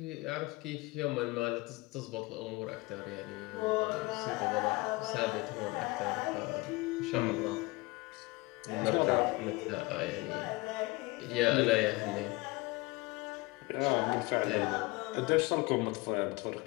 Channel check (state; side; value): quieter; right; 23.3 dB